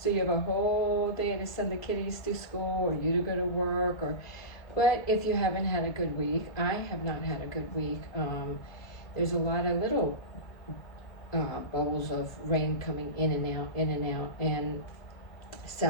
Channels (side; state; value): right; late; 1.7 ms